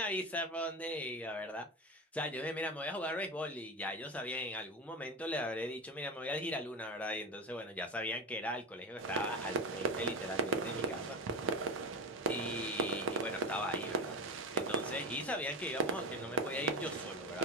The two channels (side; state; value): both; normal; correlation 0.22